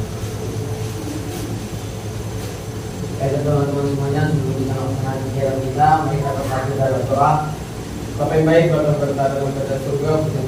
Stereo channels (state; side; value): identical; both; correlation 1.00